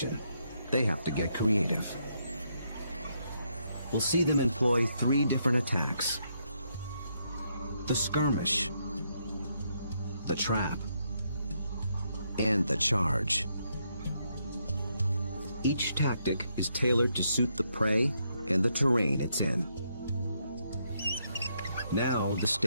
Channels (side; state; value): both; inverted; correlation -0.77